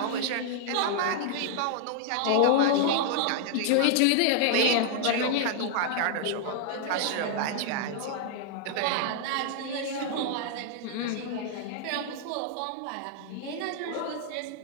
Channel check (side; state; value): both; different; correlation 0.00